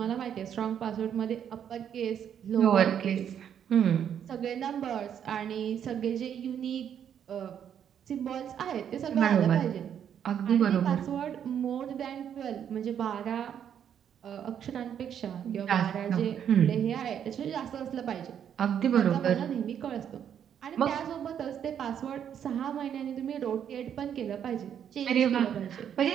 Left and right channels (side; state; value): left; quieter; 8.9 dB